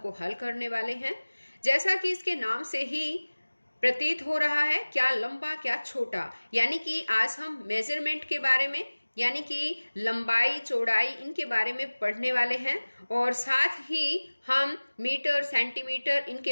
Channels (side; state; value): both; inverted; correlation -1.00